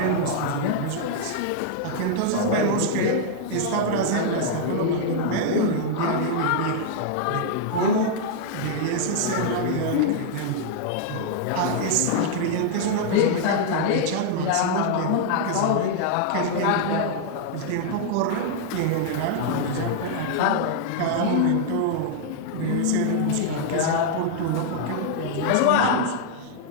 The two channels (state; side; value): different; both; correlation -0.01